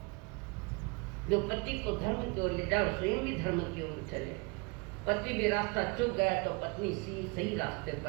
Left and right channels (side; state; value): left; quieter; 29.0 dB